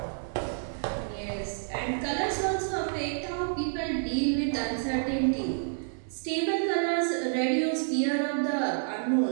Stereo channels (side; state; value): left; silent; digital silence